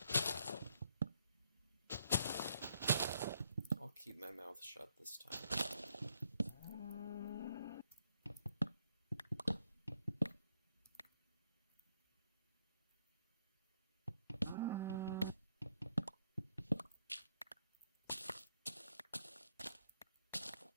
I'll keep my mouth shut this time.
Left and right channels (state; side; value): inverted; both; correlation -0.73